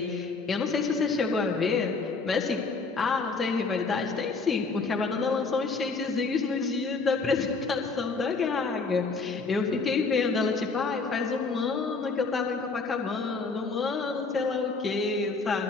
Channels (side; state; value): right; quieter; 4.2 dB